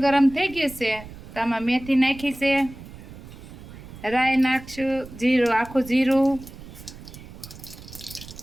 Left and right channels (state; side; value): noise; right; rumble, 16 dB below the sound